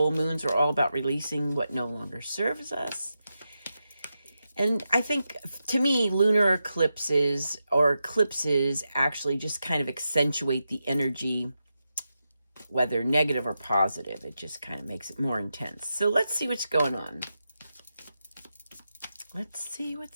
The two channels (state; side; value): inverted; both; correlation -0.88